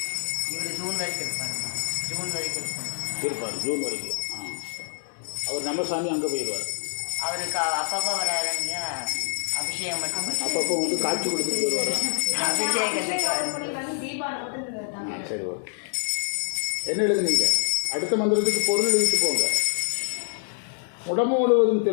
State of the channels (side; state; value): right; silent; 61 dB below the other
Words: இவர் ஜூன் வரைக்கும் இருப்பாருங்க. ஜூன் வரைக்கும் இருப்பார். ஜூன் வரைக்கும். அவர் நம்ம சாமி அங்கே போயிடுவார். அவருக்கு அப்பப்போ வராருங்க, அபிஷேகம் மட்டும் பண்ணி அப்பப்போ வந்து காட்சி கொடுத்துட்டு போயிடுவார். அபிஷேகத்துக்கு சரி, ஓகே. என்ன எழுதுனீங்க? அடுத்த மந்திரத்துக்கு பொருள் எழுதிட்டு போங்க. உடம்பு முழுவதும்